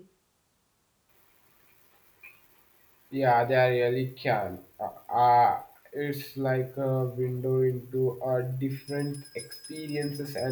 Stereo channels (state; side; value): identical; both; correlation 1.00